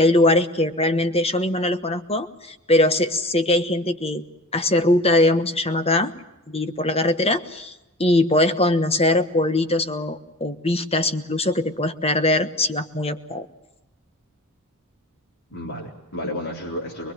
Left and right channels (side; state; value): both; normal; correlation 0.38